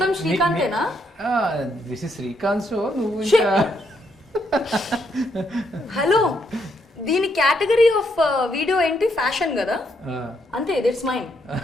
శ్రీకాంతేనా? This is Srikanth show. నువ్వు ఇంకా హలో, దీని కేటగిరీ ఆఫ్ వీడియో ఏంటి? ఫ్యాషన్ కదా, అంతే. That's mine.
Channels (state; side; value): normal; both; correlation 0.75